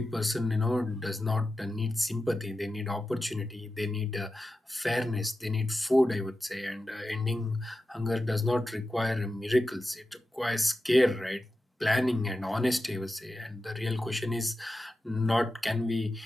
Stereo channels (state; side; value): normal; both; correlation 0.92